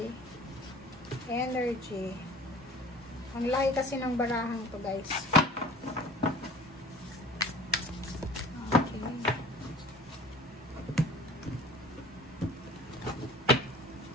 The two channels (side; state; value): both; normal; correlation 0.45